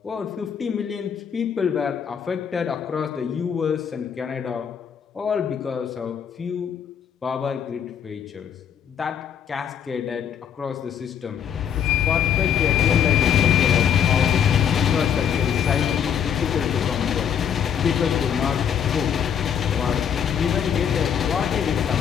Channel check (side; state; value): right; quieter; 8.2 dB